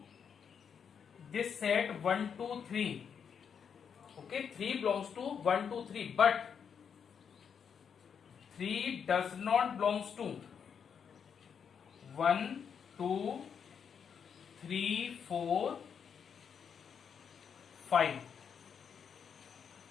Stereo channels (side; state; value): right; quieter; 7.1 dB